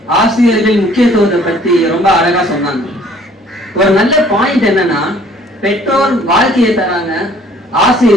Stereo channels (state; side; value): normal; both; correlation 0.57